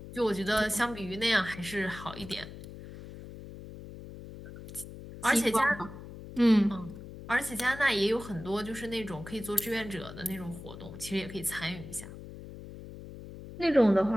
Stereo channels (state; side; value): noise; left; hum, 13 dB below the sound